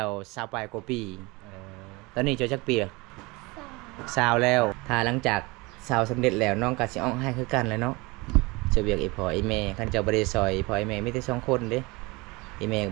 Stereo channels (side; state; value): left; quieter; 24.8 dB